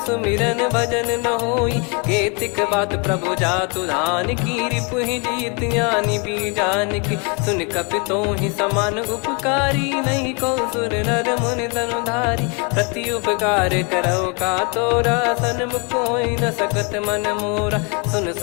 सुमिरन भजन न होई। केतिक बात प्रभु जातु धान की रिपुहि जीत ज्ञानी बीजान की। सुन कपितो ही समान उपकारी नहीं को सुर नर मुनि तनुधारी। प्रति उपकार करो का तोरा सन्मुख कोई न सकत मन मोरा। सुन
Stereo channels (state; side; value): quieter; right; 33.6 dB